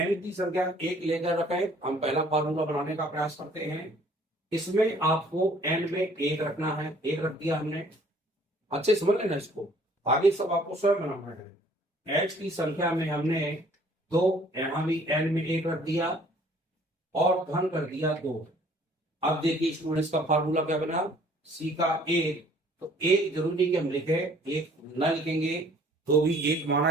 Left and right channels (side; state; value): both; normal; correlation 0.57